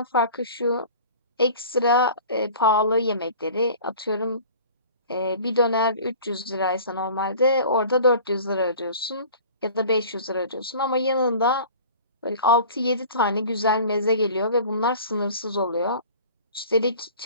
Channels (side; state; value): both; inverted; correlation -0.44